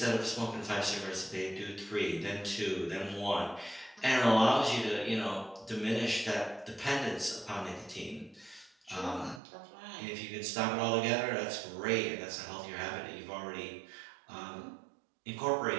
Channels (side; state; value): left; drops out; at 9.4 s